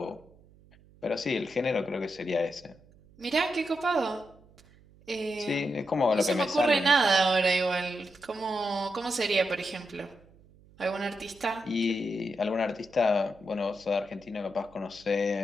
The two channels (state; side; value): noise; right; hum, 27 dB below the sound